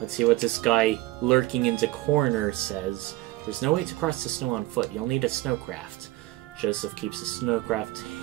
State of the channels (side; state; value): left; quieter; 17.9 dB